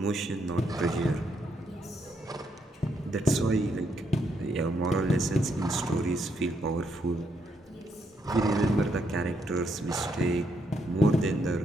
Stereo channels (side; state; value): both; normal; correlation 0.76